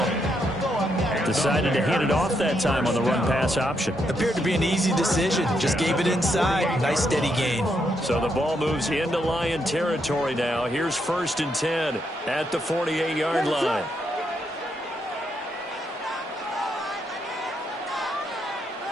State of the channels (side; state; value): both; normal; correlation 0.78